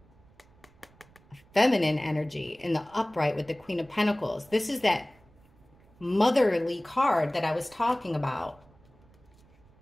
feminine energy in the upright with the Queen of Pentacles. This is that motherly card that I was talking about.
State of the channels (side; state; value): right; noise; rumble, 29 dB below the sound